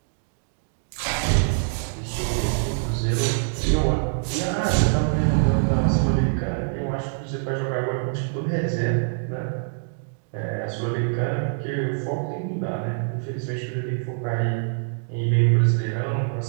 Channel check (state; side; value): silent; left; digital silence